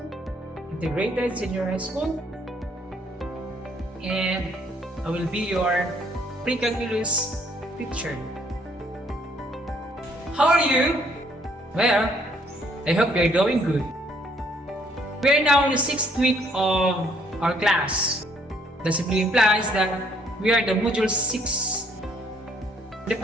Integrated Senior High School, and I will be your pre-calculus teacher. How are you? Well, I hope you're doing good. We are now in the 6th week of our class. That simply implies that we are the module 6. The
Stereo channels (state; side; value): normal; both; correlation 0.65